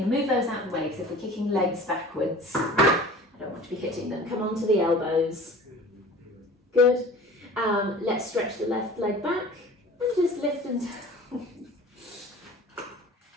move those out of the way because if we're kicking legs backwards, I don't want to be hitting them. Come on to the elbows. Good. Let's stretch the left leg back and just lift them down.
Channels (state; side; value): normal; both; correlation 0.43